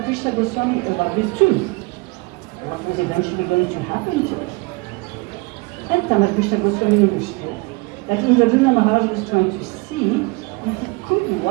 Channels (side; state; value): left; quieter; 27.3 dB